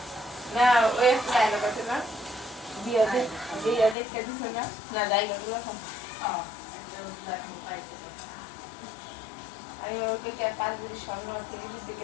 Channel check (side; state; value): right; drops out; at 4.0 s